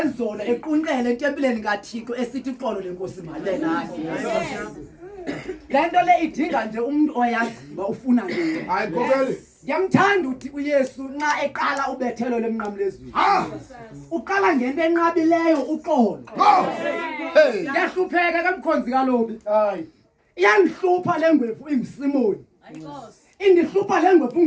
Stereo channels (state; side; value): identical; both; correlation 1.00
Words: ezolo equnqele etempileni kaThixo esithi uxolo lenkosi male nathi lento le idinga nje umuntu oyaziba ufuna nini hayi kokele Yamthanda uthi uYesu nxa eqala ubethelo lemnqamlezweni. Uqala ngento enqabileyo uqolo. Yahlupheka kamkhonzi kalobi. hayi Iyangihlupha lengwevu ingisimoni. Indihlupha lengwevu